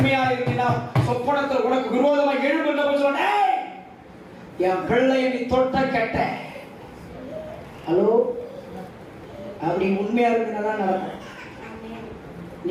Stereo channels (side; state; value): both; identical; correlation 1.00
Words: இருந்தா சொப்பனத்தில் உனக்கு விரோதமாக எழும்புகின்ற சொன்னே, என் பிள்ளையை நீ தொட்ட கெட்ட. ஹலோ, அப்படி உண்மையா இருந்தாதான் நடக்கும்.